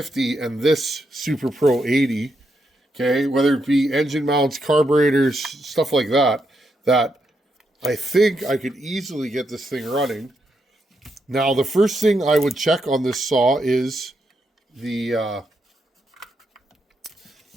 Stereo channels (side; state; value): both; normal; correlation 0.81